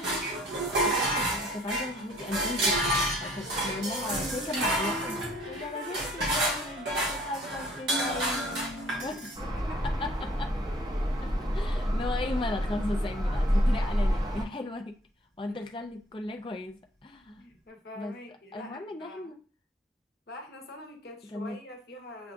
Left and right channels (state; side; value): normal; both; correlation 0.57